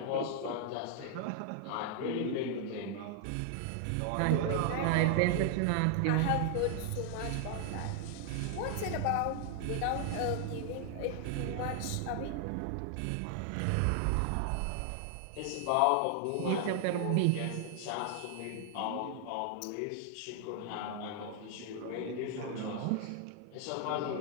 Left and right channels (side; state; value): both; different; correlation 0.00